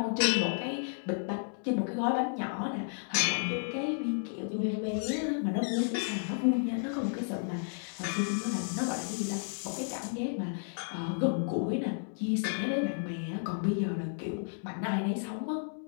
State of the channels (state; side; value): silent; right; digital silence